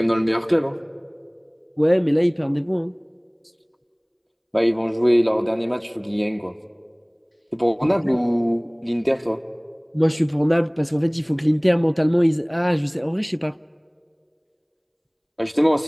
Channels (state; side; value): identical; both; correlation 1.00